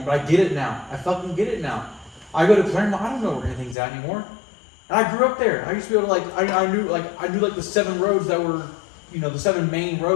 But I get it now. I fucking get it now. I go to Claremont. I don't know where anything's at anymore. And I grew up there. I used to be able to I knew the 7 roads that were, the 7 main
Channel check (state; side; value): drops out; right; at 3.8 s